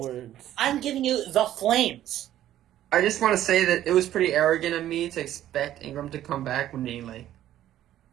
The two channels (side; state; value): left; quieter; 12.5 dB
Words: words. I'm giving you the flames. I just want to say that it was pretty arrogant of me to expect Ingram to come back when he